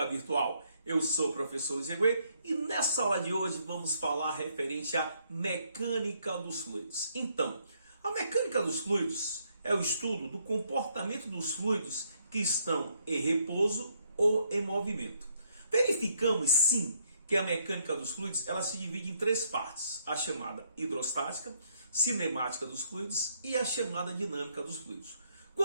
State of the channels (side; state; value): both; inverted; correlation -0.71